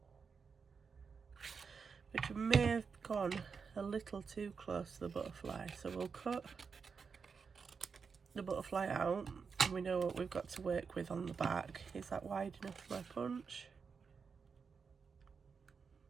which may have gone a little too close to the butterfly. So we'll cut the butterfly out, and we know what we've got to work with on the back. Is that wide enough for my punch?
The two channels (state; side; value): quieter; left; 5.5 dB